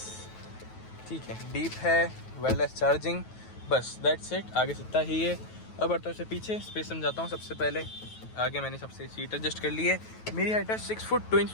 ठीक है, डीप है, वायरलेस चार्जिंग, बस दैट्स इट। आगे से इतना ही है। अब बढ़ता से पीछे स्पेस समझाता हूँ। सबसे पहले आगे मैंने सबसे सीट एडजस्ट कर ली है। मेरी हाइट है 6 फुट 2 इंच,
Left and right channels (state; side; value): late; right; 9.2 ms